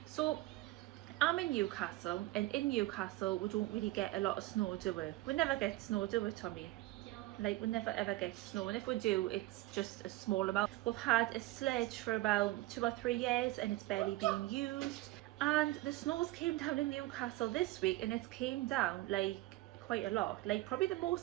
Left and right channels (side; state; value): left; quieter; 18.3 dB